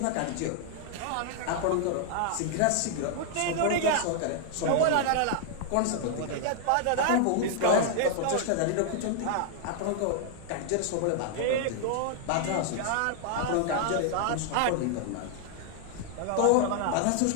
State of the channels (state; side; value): different; both; correlation 0.00